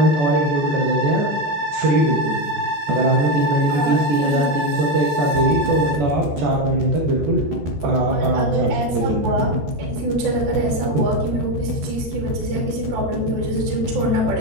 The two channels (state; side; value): late; left; 13 ms